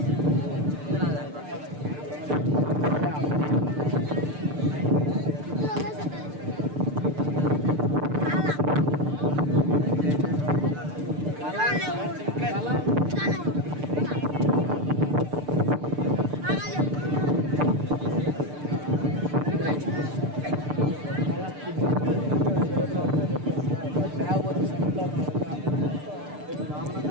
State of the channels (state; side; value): late; left; 6.7 ms